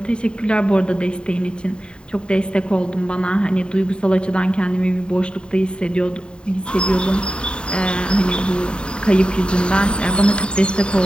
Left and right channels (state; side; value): late; right; 0.051 ms